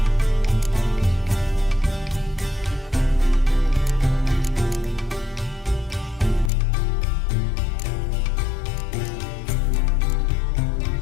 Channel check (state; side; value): drops out; right; at 6.5 s